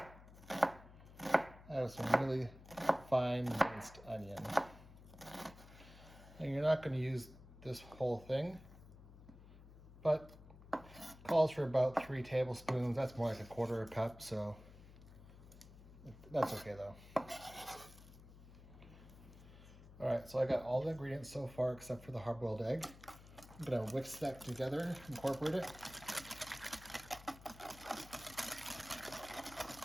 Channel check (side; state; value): left; noise; hum, 18 dB below the sound